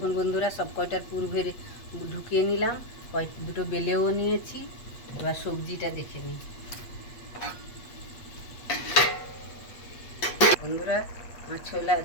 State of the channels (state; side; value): late; right; 8.3 ms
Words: বন্ধুরা, সব কয়টার পুর ভরে ঢুকিয়ে নিলাম, দুটো বেলেও নিয়েছি। এবার সবজিটা দেখে নিই। বন্ধুরা আমার